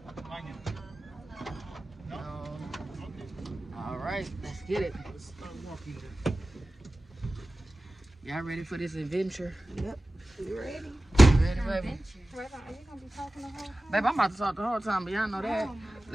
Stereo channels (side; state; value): both; normal; correlation 0.96